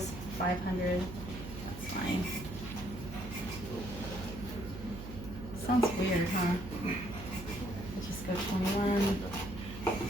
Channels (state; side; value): noise; right; hum, 10 dB below the sound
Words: 500. That's fine. Sounds weird, huh? Let's just go 21.